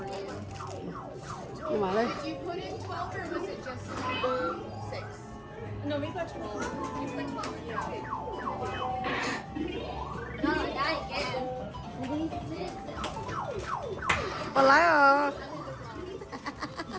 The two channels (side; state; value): both; identical; correlation 1.00